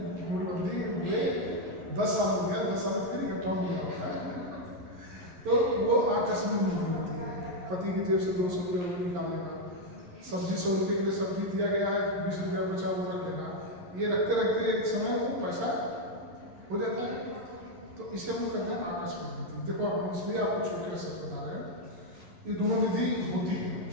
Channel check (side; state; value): left; late; 11 ms